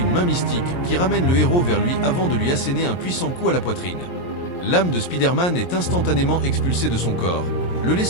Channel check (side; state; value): right; late; 23 ms